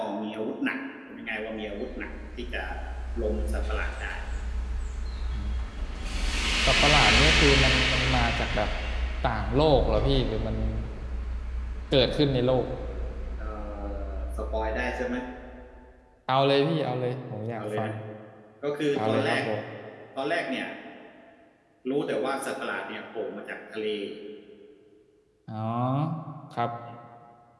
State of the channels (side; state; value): both; identical; correlation 1.00